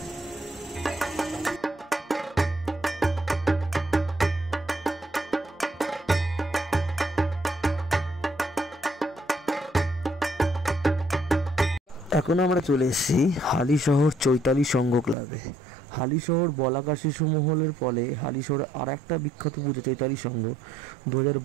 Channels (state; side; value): drops out; left; at 15.2 s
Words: এখন আমরা চলে এসেছি হালিশহর চৈতালি সংঘ ক্লাবে। হালিশহর বলাকা শিশু মহলের ফলে হালিশহরে আর একটা বিখ্যাত পুজো চৈতালি সংঘ